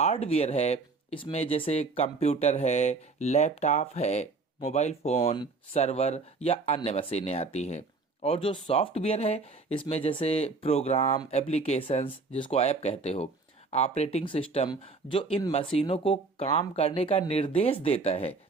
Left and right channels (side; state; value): left; quieter; 4.0 dB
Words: है इसमें जैसे कंप्यूटर है, लैपटॉप है, मोबाइल फोन, सर्वर या अन्य मशीनें आती हैं। और जो सॉफ्टवेयर है इसमें जैसे प्रोग्राम, एप्लीकेशंस जिसको ऐप कहते हो, ऑपरेटिंग सिस्टम जो इन मशीनों को काम करने का निर्देश देता है,